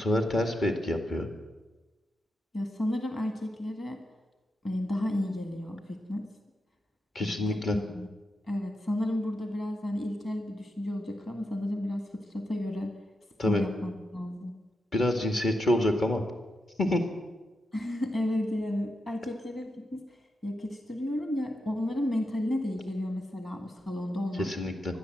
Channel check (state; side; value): normal; both; correlation 0.86